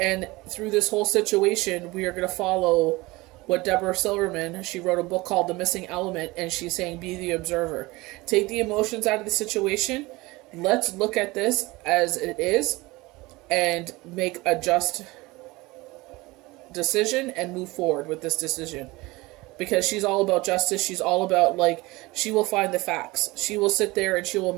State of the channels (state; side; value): quieter; left; 21.8 dB